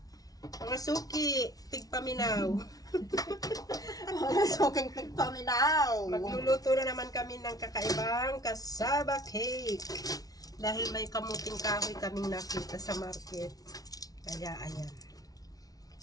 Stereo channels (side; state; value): right; late; 0.18 ms